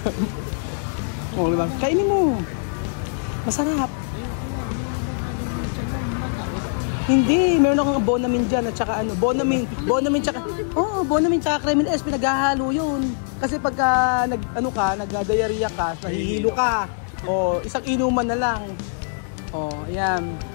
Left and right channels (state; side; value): silent; right; digital silence